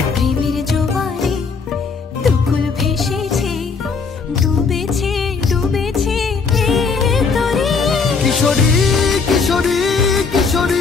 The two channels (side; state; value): right; quieter; 5.0 dB